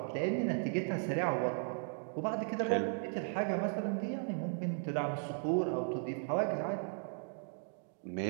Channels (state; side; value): silent; left; 53 dB below the other